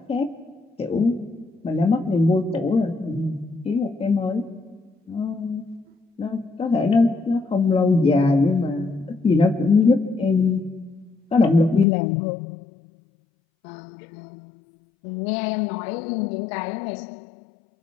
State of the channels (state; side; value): drops out; right; at 11.9 s